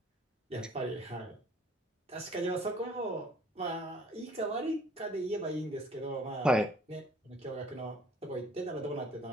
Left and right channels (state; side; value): normal; both; correlation 0.55